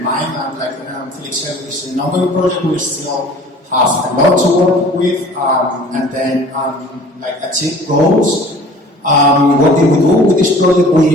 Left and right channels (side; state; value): both; normal; correlation 0.48